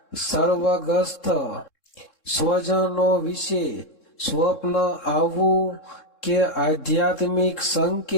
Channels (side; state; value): right; late; 3.7 ms